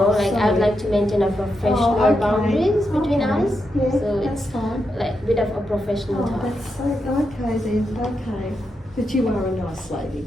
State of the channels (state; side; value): normal; both; correlation 0.85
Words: like to maintain a professional Oh, okay. boundaries between Okay. us. Yeah, So that's it's fine. like a bit of a professional Oh, talk. that's so okay then. Okay, but you are a nice lady.